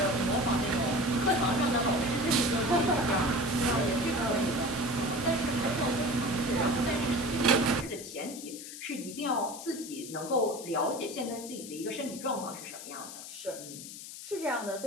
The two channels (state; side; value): noise; left; hiss, 12 dB below the sound